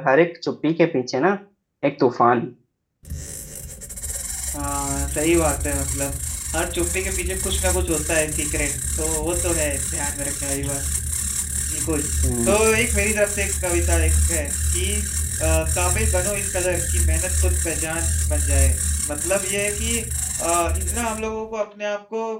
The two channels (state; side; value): identical; both; correlation 1.00